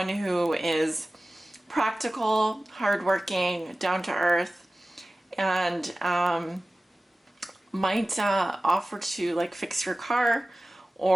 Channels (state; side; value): normal; both; correlation 0.97